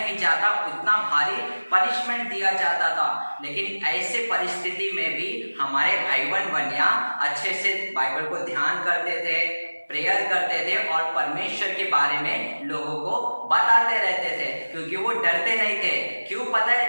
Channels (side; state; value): both; inverted; correlation -1.00